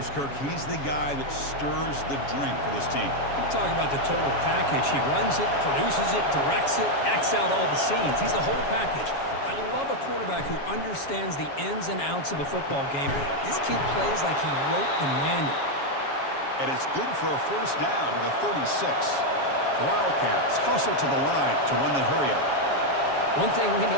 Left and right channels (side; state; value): right; late; 7.2 ms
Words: Kirk, he's the guy that stirs the drink for this team. You talk about the total package. He runs it, produces it, directs it, acts out all the scenes. He's the whole package. I love a quarterback who understands the ins and outs of a football game. This kid plays like he wrote the manual. And it's good for a first down to the 36. The Wildcats hustle to the line to run the hurry-up. One thing we